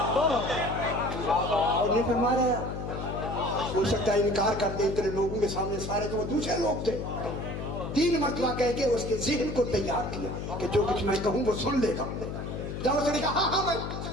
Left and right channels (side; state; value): left; noise; hum, 6 dB below the sound